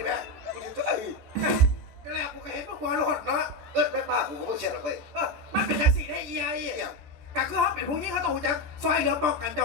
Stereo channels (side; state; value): left; late; 14 ms